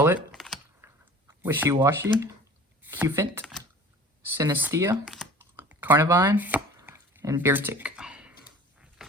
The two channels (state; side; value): normal; both; correlation 0.44